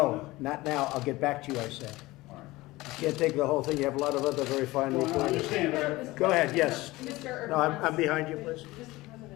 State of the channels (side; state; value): right; quieter; 19.6 dB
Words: not now. I'll get back to you, I said. All right. You can't take the whole thing. You have a lot of other very fine Well, I reporters. understand. Go ahead, yes. Mr. No, I'm behind you, please. Mr.